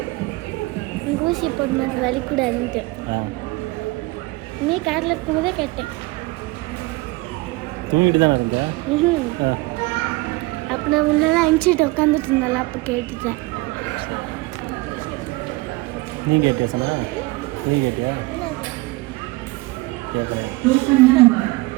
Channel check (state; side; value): quieter; left; 22.2 dB